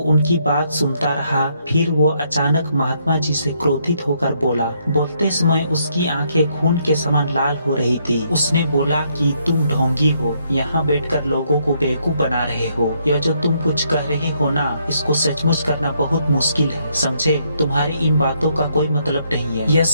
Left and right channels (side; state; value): both; inverted; correlation -0.73